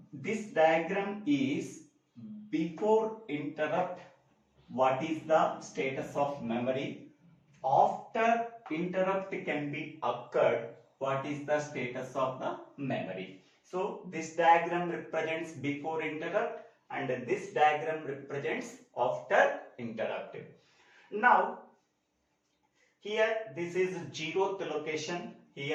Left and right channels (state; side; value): identical; both; correlation 1.00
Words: this diagram is before interrupt, what is the status of memory. After interrupt can be occurred, what is the status of the memory. So this diagram represents before interrupt and this diagram represents after interrupt. Now here this is 0th location,